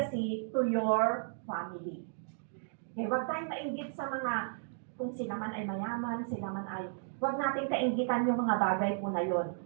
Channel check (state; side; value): silent; left; digital silence